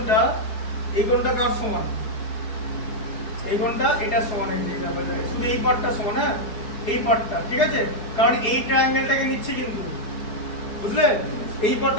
কার সমান? এই কোণটা এটা সমান, এই যে শুধু এই পার্টটা সমান, হ্যাঁ এই পার্টটা, ঠিক আছে? কারণ এই ট্রায়াঙ্গেলটাকে নিচ্ছি কিন্তু, বুঝলে? এই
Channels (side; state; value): right; late; 4.8 ms